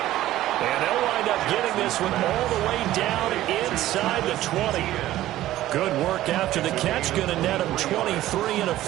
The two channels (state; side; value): quieter; left; 14.6 dB